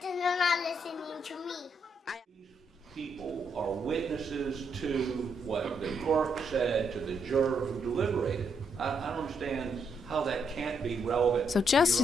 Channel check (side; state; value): both; normal; correlation 0.77